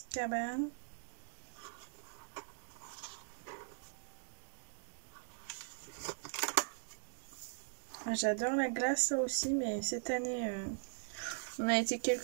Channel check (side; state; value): left; silent; digital silence